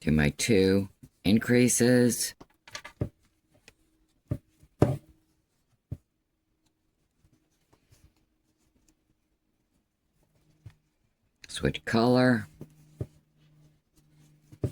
Do my 2 increases. Switch color.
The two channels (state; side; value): identical; both; correlation 1.00